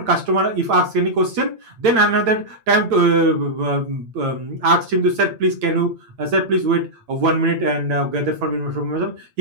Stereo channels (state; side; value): late; left; 8.9 ms